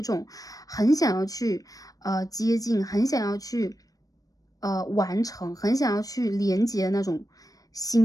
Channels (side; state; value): right; late; 0.18 ms